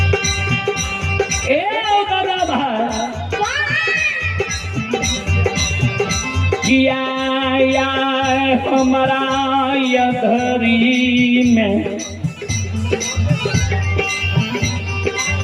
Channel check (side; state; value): both; identical; correlation 1.00